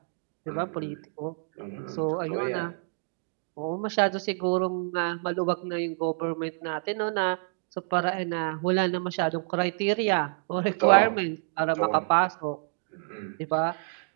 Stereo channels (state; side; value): silent; left; 59 dB below the other